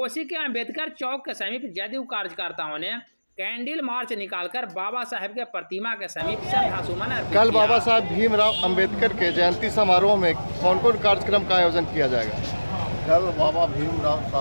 के अंबेडकर चौक के समीप जदयू कार्यकर्ताओं ने कैंडल मार्च निकालकर बाबा साहेब के प्रतिमा के समीप श्रद्धासुमन अर्पित किया। कल बाबा साहेब भीमराव अंबेडकर के जयंती समारोह में कौन कौन कार्यक्रम का आयोजन किया जाएगा? कल बाबा भीमराव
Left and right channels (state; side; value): inverted; both; correlation -1.00